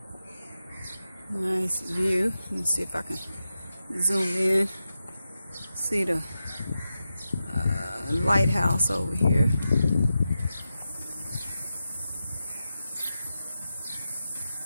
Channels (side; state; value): both; inverted; correlation -0.90